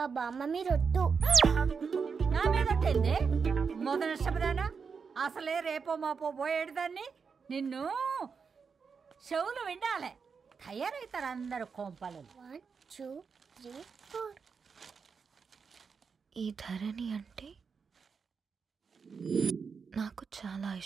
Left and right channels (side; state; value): left; quieter; 5.6 dB